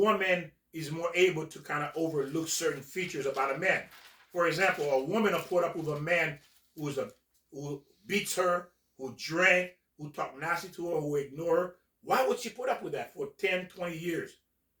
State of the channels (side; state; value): both; identical; correlation 1.00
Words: is more able to kind of overlook certain features about a man. For example, a woman will put up with a man who beats her, who drank, who talk nasty to her, who ignore her. Why would she put up with that for 10, 20 years?